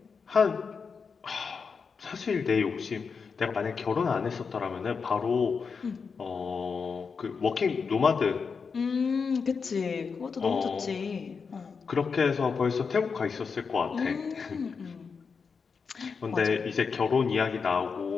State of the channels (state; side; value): quieter; right; 5.5 dB